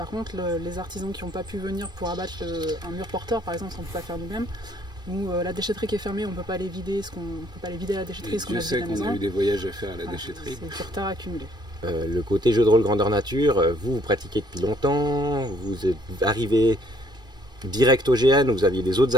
contre, les artisans qui n'ont pas pu venir pour abattre un mur porteur, par exemple, on ne peut pas faire nous-mêmes. Ou la déchetterie qui est fermée, on ne peut pas les vider, à la déchetterie. Je sais qu'on a eu des voyages à faire à la déchetterie. C'est du retard accumulé. Le côté jeu de rôle grandeur nature, vous pratiquez depuis longtemps, vous êtes arrivé direct au GN, vous aviez des autres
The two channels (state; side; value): late; left; 2.6 ms